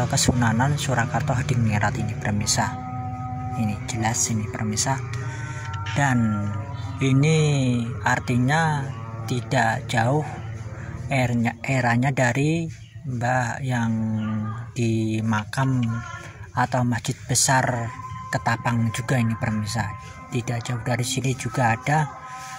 Kesunanan Surakarta Hadingrat ini permisa. Ini jelas ini permisa. Dan ini artinya tidak jauh eranya dari Mbah yang di makam atau masjid besar Ketapang juga ini permisa. Tidak jauh dari sini juga ada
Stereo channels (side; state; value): both; identical; correlation 1.00